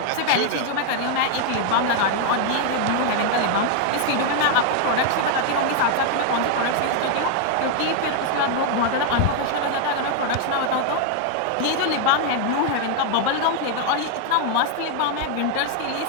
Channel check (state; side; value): different; both; correlation 0.00